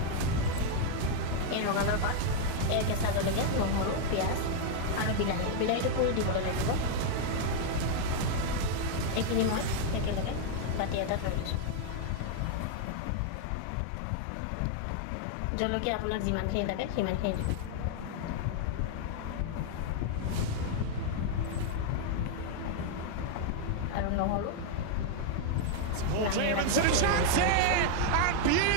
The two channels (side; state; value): both; different; correlation 0.00